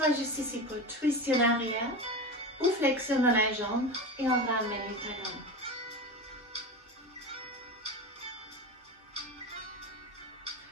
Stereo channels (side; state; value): both; normal; correlation 0.25